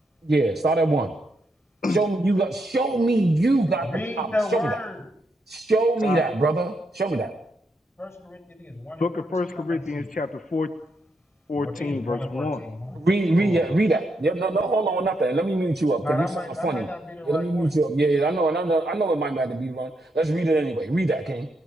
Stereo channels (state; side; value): normal; both; correlation 0.80